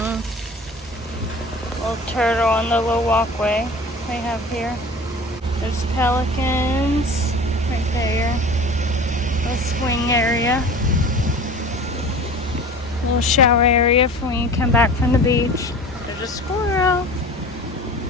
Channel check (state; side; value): normal; both; correlation 0.39